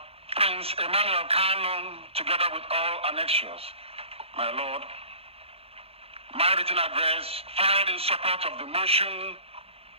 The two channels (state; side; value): late; left; 0.29 ms